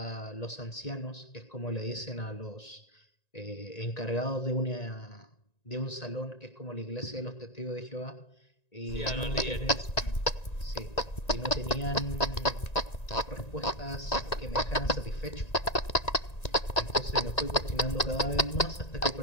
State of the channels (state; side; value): late; right; 1.9 ms